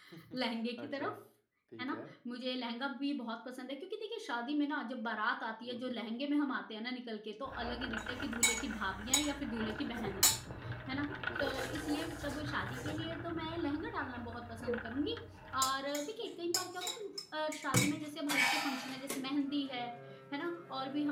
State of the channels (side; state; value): both; identical; correlation 1.00